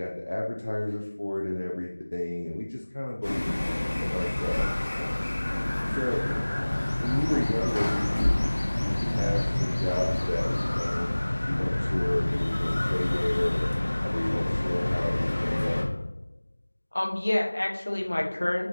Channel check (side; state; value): both; inverted; correlation -1.00